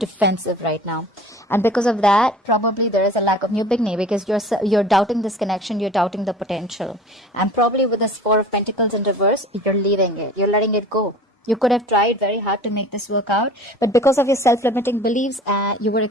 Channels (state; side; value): normal; both; correlation 0.43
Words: right now. And because of that, probably there is a lack of new beginning, because you're doubting this connection, you're doubting the potential. And probably with this Four of Pentacles in reverse, you're leaving it. You're letting it go. You could have tried very hard to make this work out, but because of your self-limiting beliefs, you were